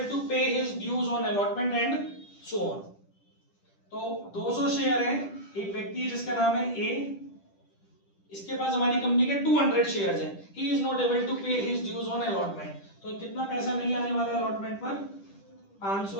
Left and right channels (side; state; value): right; late; 10 ms